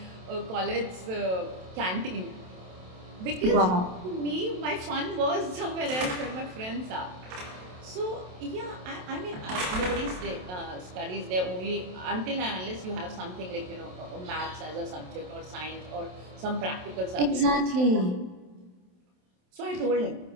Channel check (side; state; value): left; late; 27 ms